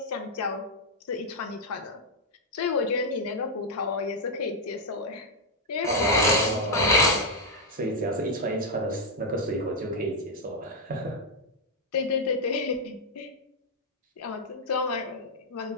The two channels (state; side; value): normal; both; correlation -0.02